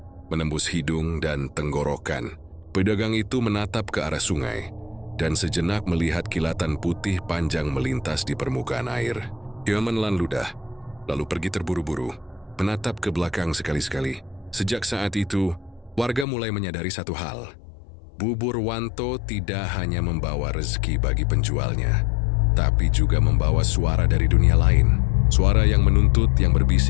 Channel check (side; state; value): right; drops out; at 16.2 s